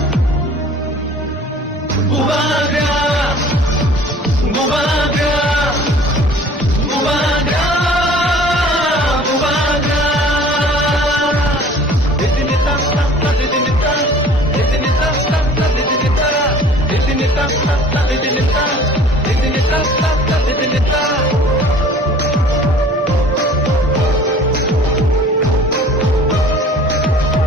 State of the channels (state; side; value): normal; both; correlation 0.49